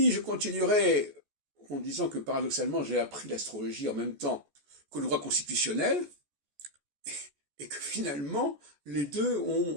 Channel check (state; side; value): late; left; 14 ms